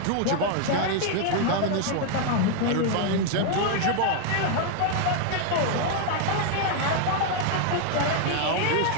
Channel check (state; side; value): different; both; correlation 0.00